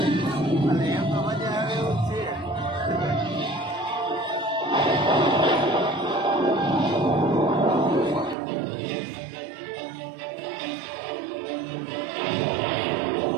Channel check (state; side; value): drops out; left; at 8.3 s